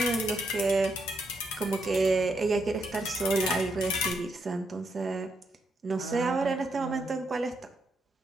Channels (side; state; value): both; normal; correlation 0.79